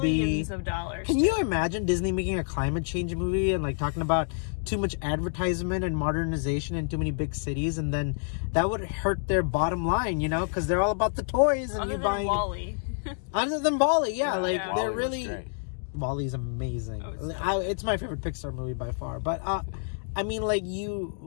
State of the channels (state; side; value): silent; right; digital silence